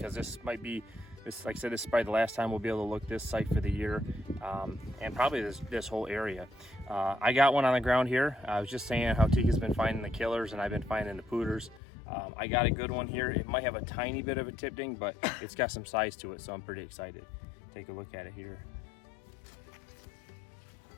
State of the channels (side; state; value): right; drops out; at 11.8 s